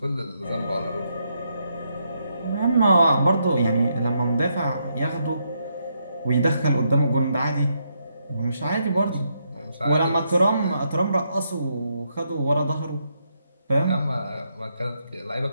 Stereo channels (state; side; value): inverted; both; correlation -0.79